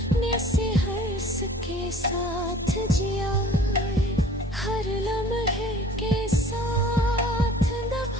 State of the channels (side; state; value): both; normal; correlation 0.50